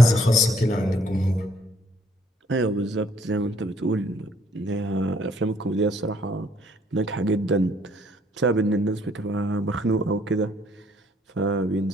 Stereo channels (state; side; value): normal; both; correlation 0.64